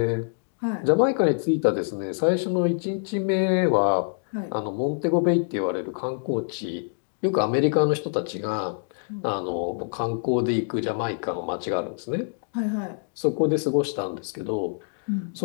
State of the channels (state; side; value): silent; right; digital silence